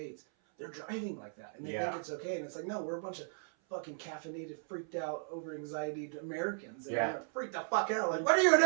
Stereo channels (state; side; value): silent; left; 54 dB below the other